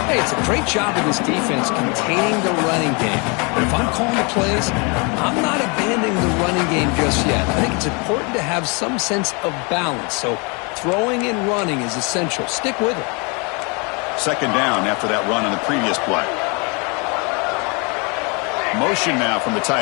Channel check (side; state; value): right; quieter; 32.0 dB